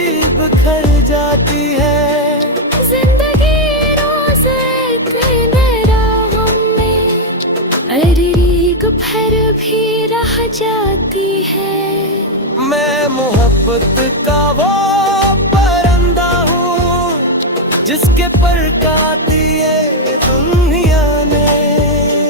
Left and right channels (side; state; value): both; normal; correlation 0.02